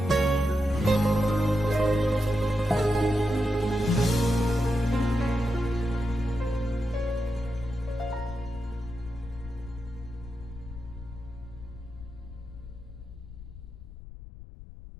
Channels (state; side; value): noise; left; rumble, 14 dB below the sound